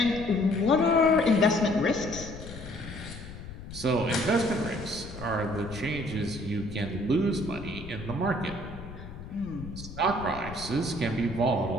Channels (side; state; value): left; noise; rumble, 12 dB below the sound